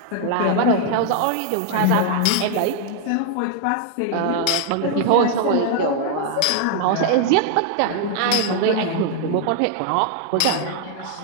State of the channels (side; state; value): both; different; correlation 0.00